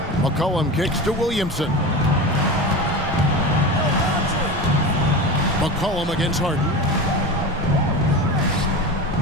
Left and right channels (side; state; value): both; normal; correlation 0.27